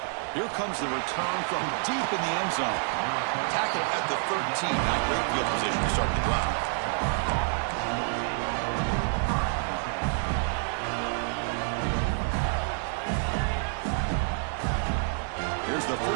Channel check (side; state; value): left; silent; 55 dB below the other